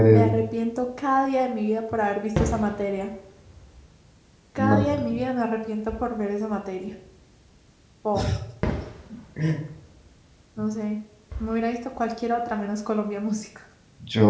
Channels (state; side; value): identical; both; correlation 1.00